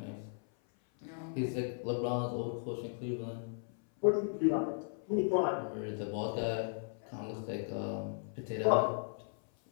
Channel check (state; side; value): silent; right; 54 dB below the other